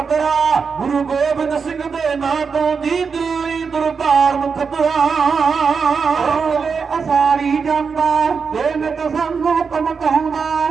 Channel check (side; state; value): left; quieter; 5.6 dB